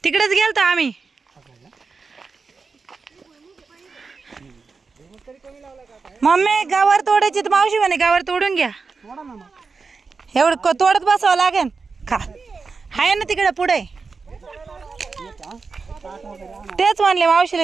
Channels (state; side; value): quieter; left; 4.6 dB